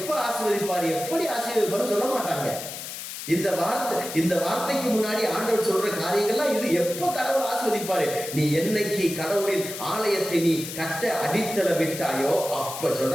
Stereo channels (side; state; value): left; noise; hiss, 9 dB below the sound